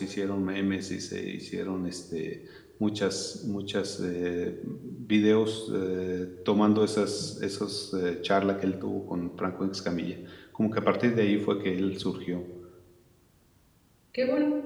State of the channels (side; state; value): both; identical; correlation 1.00